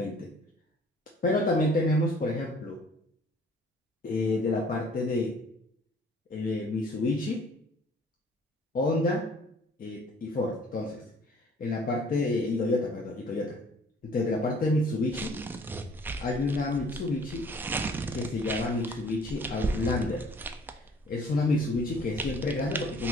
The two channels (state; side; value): normal; both; correlation 0.55